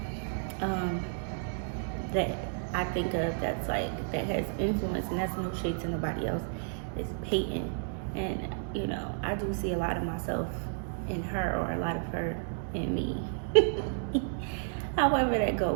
that I think of that's like, that has influence, and that's no shade to nobody else, is Peyton. And, you know, I do see a lot of myself in her, or a lot of her in me. However that go,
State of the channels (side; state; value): left; silent; digital silence